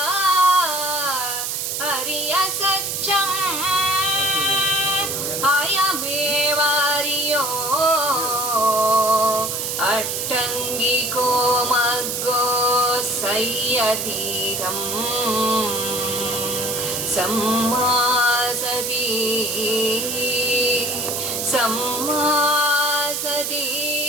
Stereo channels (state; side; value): noise; right; hiss, 2 dB below the sound